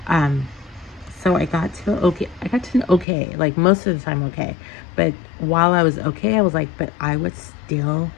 So I got to an okay, like most of the time okay. But while I was okay, I was like, but I would still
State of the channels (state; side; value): drops out; right; at 3.1 s